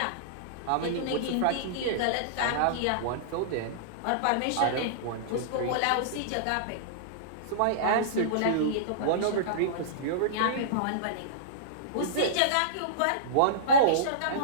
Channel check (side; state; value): both; different; correlation -0.03